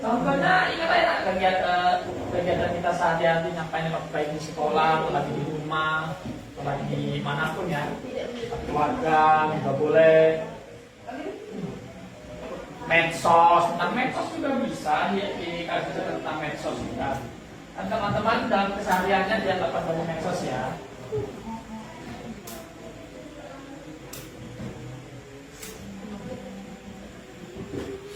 contohnya ingat ya kegiatan kita sehari-hari ngapain, baik di sekolah, lagi di rumah, lagi di manapun ya, keluarga juga boleh. Medsos, tentang medsos juga bisa dikasih tentang medsos juga. Kan teman-teman dalam kesehariannya dia dapat dari medsos ya.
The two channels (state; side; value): identical; both; correlation 1.00